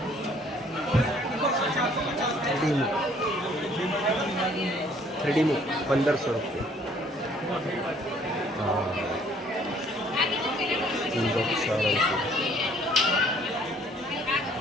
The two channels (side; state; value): both; normal; correlation 0.60